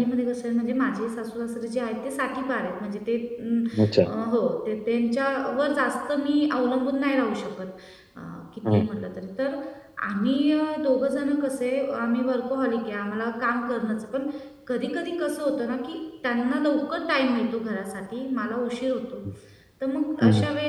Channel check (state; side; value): identical; both; correlation 1.00